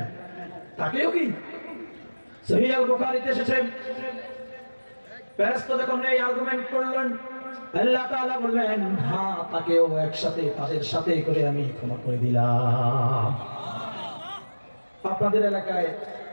তাকেও কি সহিহ আল বুখারীতে এসেছে, ফেরেশতা যখন এই আর্গুমেন্ট করলেন, আল্লাহ তাআলা বললেন হ্যাঁ তাকেও একসাথে তাদের সাথে করে আমি ক্ষমা করে দিলাম। আপনাদের এলাকায়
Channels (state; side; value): inverted; both; correlation -1.00